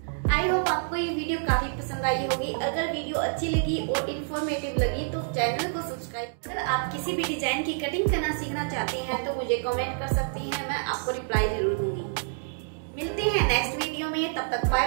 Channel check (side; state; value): left; silent; digital silence